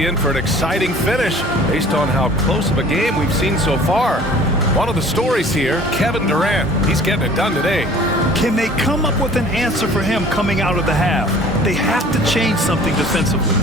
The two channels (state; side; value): normal; both; correlation 0.49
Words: in for an exciting finish based on how close of a game we've seen so far. One of the stories here, Kevin Durant. He's getting it done today. Can they come up with an answer for him coming out of the half? They have to change something defensively.